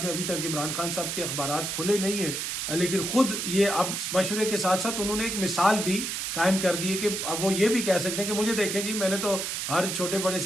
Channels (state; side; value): noise; right; hiss, 3 dB below the sound